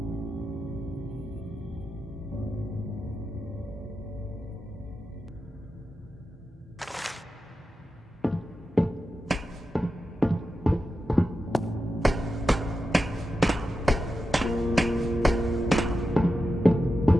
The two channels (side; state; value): both; normal; correlation 0.90